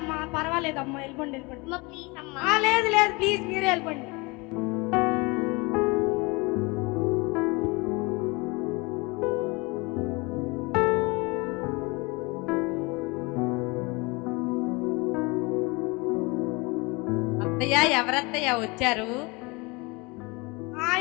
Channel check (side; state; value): right; quieter; 26.5 dB